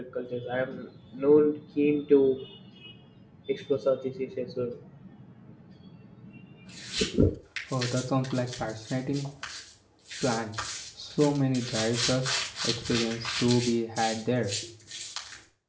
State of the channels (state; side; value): identical; both; correlation 1.00